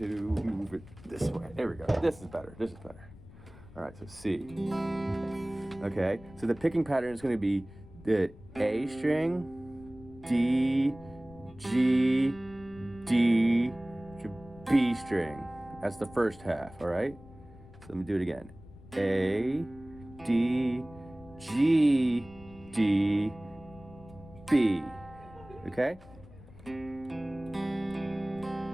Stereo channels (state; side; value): noise; left; rumble, 20 dB below the sound